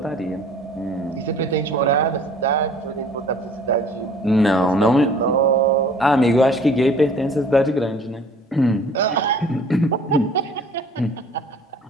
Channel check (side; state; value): both; normal; correlation 0.51